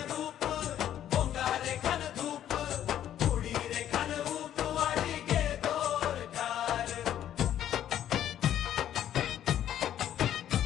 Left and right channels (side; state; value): right; quieter; 11.0 dB